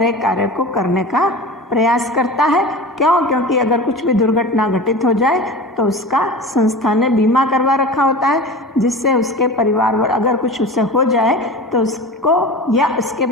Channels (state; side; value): normal; both; correlation 0.33